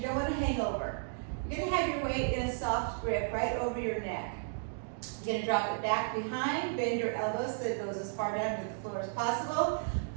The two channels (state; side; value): silent; left; digital silence